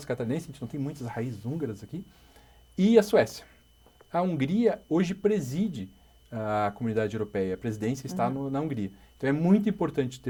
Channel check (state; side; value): identical; both; correlation 1.00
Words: catarinenses, a gente não tem muitas raízes húngaras aqui, e a Suécia. A Hungria hoje preside a comunidade europeia, a presidência está na Hungria. Então é muito importante